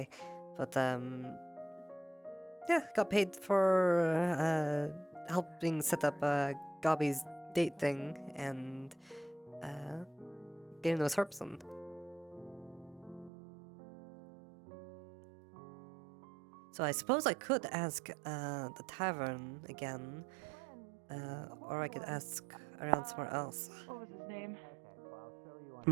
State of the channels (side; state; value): left; drops out; at 13.3 s